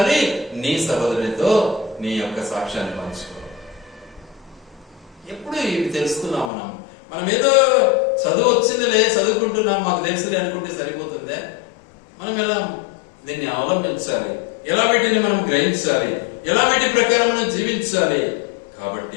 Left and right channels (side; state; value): right; drops out; at 6.5 s